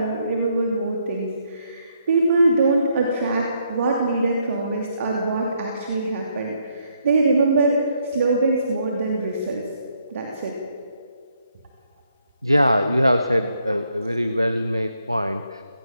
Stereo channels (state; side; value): inverted; both; correlation -0.74